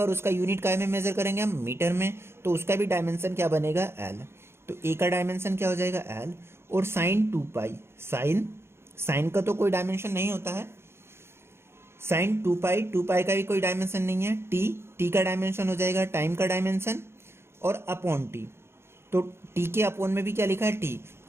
और उसका यूनिट काय में मेजर करेंगे हम, मीटर में, तो उसका भी डायमेंशन क्या बनेगा, एल। तो ए का डायमेंशन क्या हो जाएगा, एल। और साइन 2 पाई, साइन का तो कोई डायमेंशन नहीं होता है। साइन 2 पाई का भी कोई डायमेंशन नहीं है। टी का डायमेंशन हो जाएगा टाइम का डायमेंशन, और अपॉन टी। तो टी के अपॉन में भी क्या लिखा है, टी।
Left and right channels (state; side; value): late; left; 0.12 ms